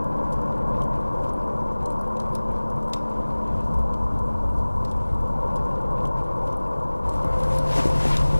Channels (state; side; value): inverted; both; correlation -1.00